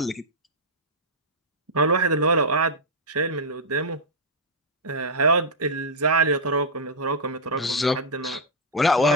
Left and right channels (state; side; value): normal; both; correlation -0.05